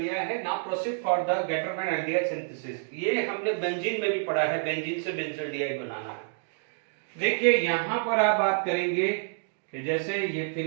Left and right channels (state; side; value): silent; left; digital silence